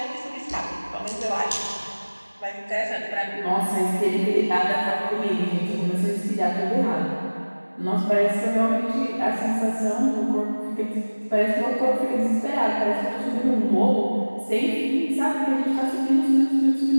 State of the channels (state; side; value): inverted; both; correlation -1.00